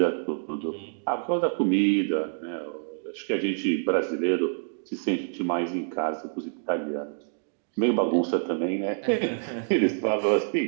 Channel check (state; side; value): silent; left; digital silence